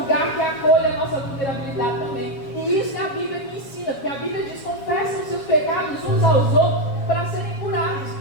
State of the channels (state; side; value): late; right; 7.3 ms